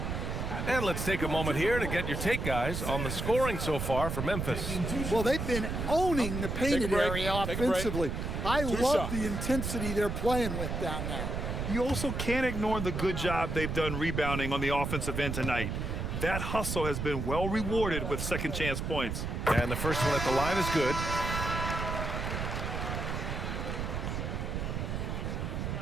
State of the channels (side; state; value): right; noise; rumble, 3 dB below the sound